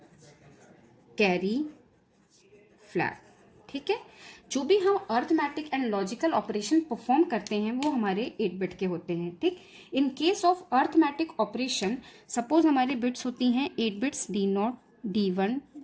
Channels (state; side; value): identical; both; correlation 1.00